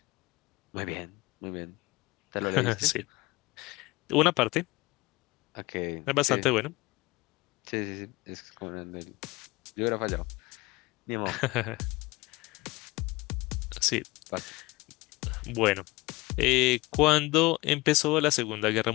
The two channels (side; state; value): right; quieter; 22.4 dB